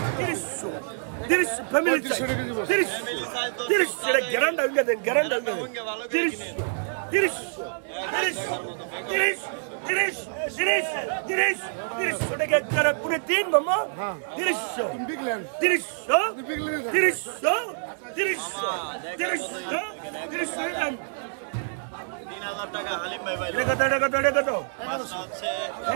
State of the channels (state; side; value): silent; left; 60 dB below the other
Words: 30 ফ্যামিলি সাইজ 30 গ্যারান্টি হয়ে গেছে গ্যারান্টি ভালো করে কিনে 30 টাকা যারা পুরো 3 মামা 3000 টাকা হালিম ভাই ভাই মাছটা হচ্ছে